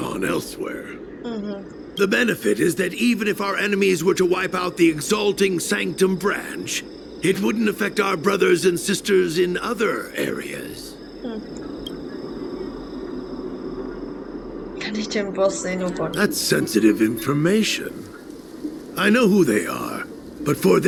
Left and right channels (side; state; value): both; identical; correlation 1.00